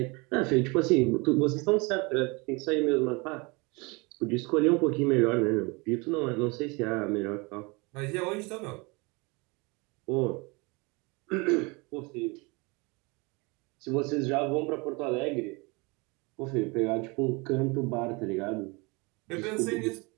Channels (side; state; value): left; quieter; 27.5 dB